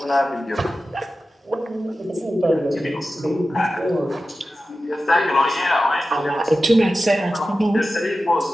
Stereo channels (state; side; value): normal; both; correlation 0.93